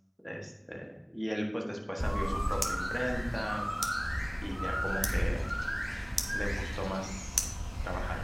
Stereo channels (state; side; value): identical; both; correlation 1.00